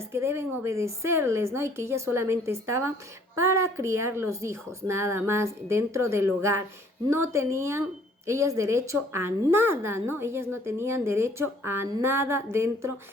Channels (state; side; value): normal; both; correlation 0.59